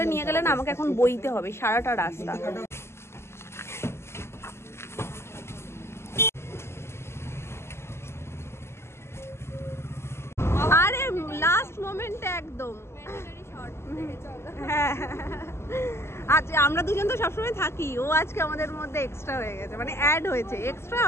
নিয়ে গেলে না আমাকে এখন বইতে হবে সারাটা রাস্তা। আরে লাস্ট মোমেন্টে একদম। হ্যাঁ আচ্ছা, আমরা দুজন তো সবসময় থাকি, ও আজকে আমাদের মধ্যে এক্সট্রা হয়ে গেছে, মানে অ্যাড হয়েছে, এক্সট্রা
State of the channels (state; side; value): late; right; 0.12 ms